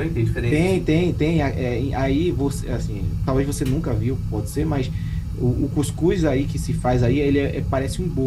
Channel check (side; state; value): both; identical; correlation 1.00